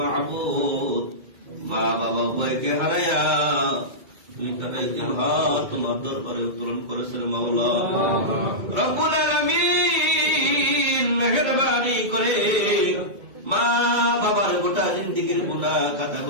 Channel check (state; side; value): late; left; 2.1 ms